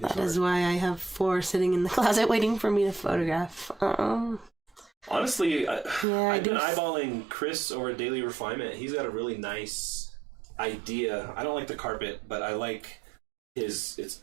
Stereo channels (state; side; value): drops out; left; at 6.1 s